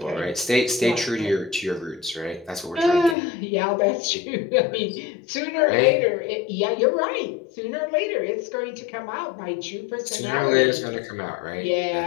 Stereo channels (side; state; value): right; drops out; at 3.2 s